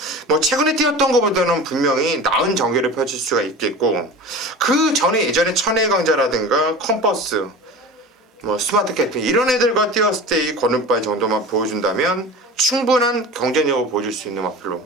뭐 최근에 뛰었던 것보다는 분명히 나은 전개를 펼칠 수가 있겠고 그 전에 예전에 천혜강자라든가 컴퍼스 뭐 스마트 캐피 이런 애들과 뛰었을 때 이 거듭발 정도만 보여준다면 충분한 경쟁력을 보여줄 수 있는 마필로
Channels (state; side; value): normal; both; correlation 0.33